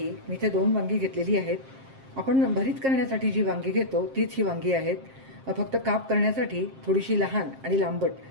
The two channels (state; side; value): late; left; 7.5 ms